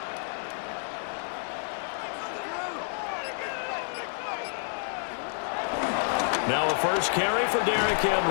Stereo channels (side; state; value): right; silent; digital silence